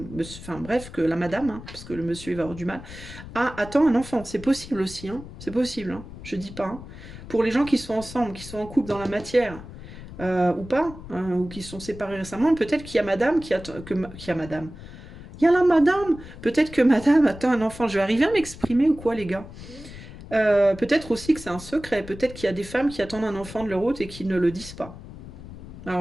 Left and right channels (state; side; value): noise; left; rumble, 14 dB below the sound